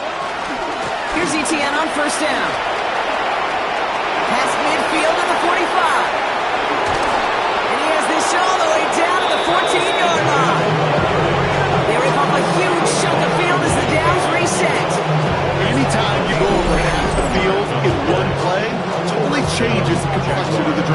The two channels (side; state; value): both; identical; correlation 1.00